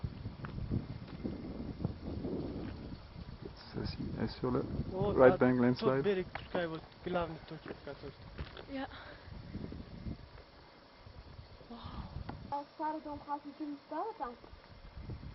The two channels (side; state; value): both; identical; correlation 1.00